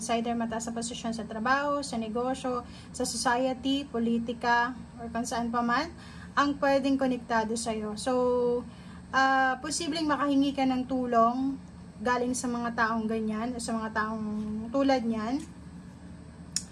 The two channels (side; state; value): both; identical; correlation 1.00